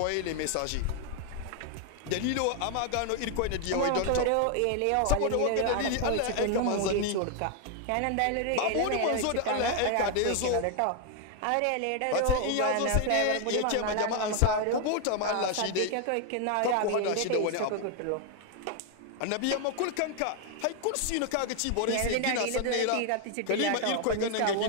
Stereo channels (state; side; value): different; both; correlation 0.00